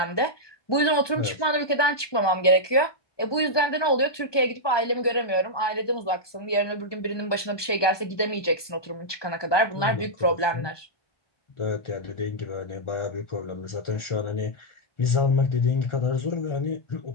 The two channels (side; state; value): right; late; 1.2 ms